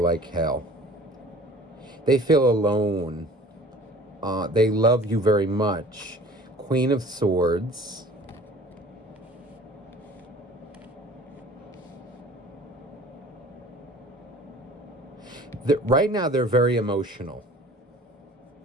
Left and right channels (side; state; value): both; normal; correlation 0.47